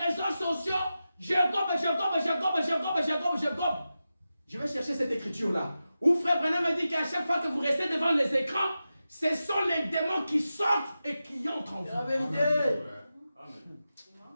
réseaux sociaux, je gobe. Je vais chercher cette écriture-là. Où Frère Branham me dit qu'à chaque fois que vous restez devant les écrans, ce sont les démons qui sortent et qui entrent en vous. La vérité. Amen.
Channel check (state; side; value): inverted; both; correlation -0.92